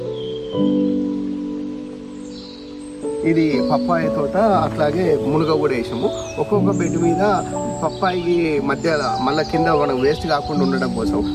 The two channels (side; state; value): both; identical; correlation 1.00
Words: ఇది పప్పాయ తోట, అట్లాగే మునగ కూడా వేసాము. ఒక్కొక్క బెడ్ మీద పప్పాయి మధ్య మళ్ళీ కింద మనం వేస్ట్ కాకుండా ఉండడం కోసం